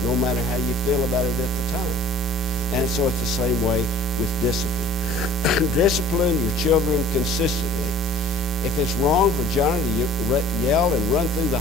no matter how you feel about it at the time. And so it's the same way with discipline. Discipline your children consistently. If it's wrong for Johnny to yell and run through the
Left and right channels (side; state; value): both; normal; correlation 0.49